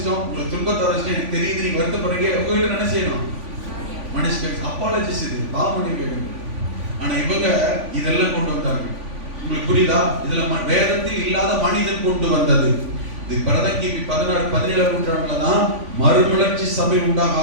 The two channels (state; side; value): late; left; 3.5 ms